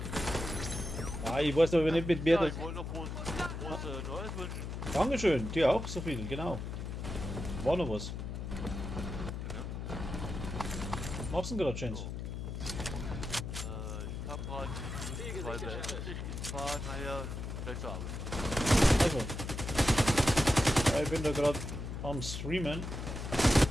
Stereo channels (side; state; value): left; noise; hum, 6 dB below the sound